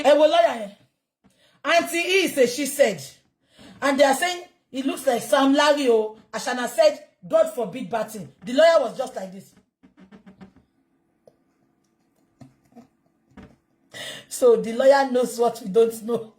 Auntie E says she said, and they are saying it looks like Sam Larry. Ashana said, God forbid batting. The lawyer was just like this. So the lawyer knows what we don't know.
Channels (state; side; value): identical; both; correlation 1.00